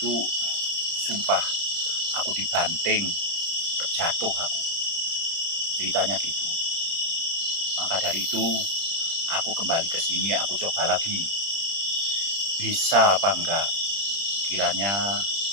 sumpah aku dibanting, terjatuh aku. Ceritanya gitu. Maka dari itu aku kembali ke sini, aku coba lagi. Bisa apa enggak? Kiranya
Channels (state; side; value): late; left; 30 ms